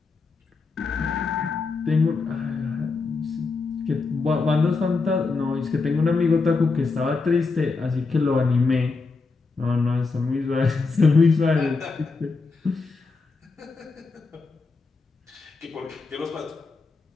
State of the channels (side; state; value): right; quieter; 4.2 dB